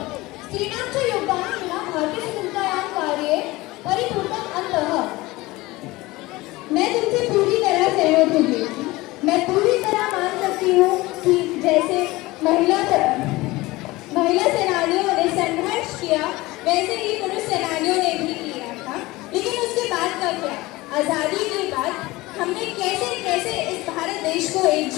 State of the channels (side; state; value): right; quieter; 20.3 dB